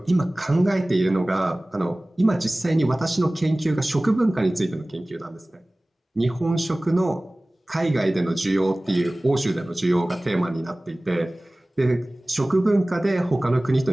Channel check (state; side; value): normal; both; correlation 0.98